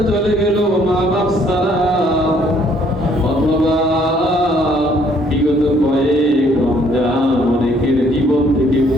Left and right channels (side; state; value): both; normal; correlation 0.64